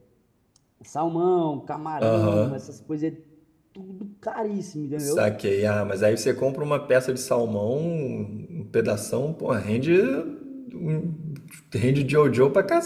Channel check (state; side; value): identical; both; correlation 1.00